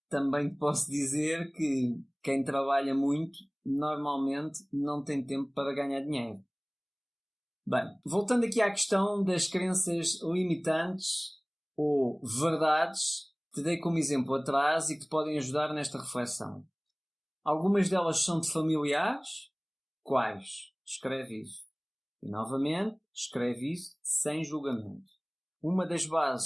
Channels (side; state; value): both; identical; correlation 1.00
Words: também te posso dizer que quem trabalha muito, normalmente não tem tempo para ganhar dinheiro. Bem, voltando aqui à questão das crenças limitantes ou verdades, te dei como exemplo atrás e que te podem ajudar nesta reflexão. Algumas delas são-te familiares? Quais? Escreve isso. E novamente, escreve isso sem julgamento. Uma das